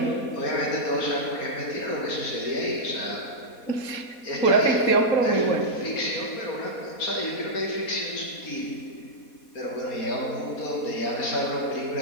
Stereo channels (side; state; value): right; late; 4.2 ms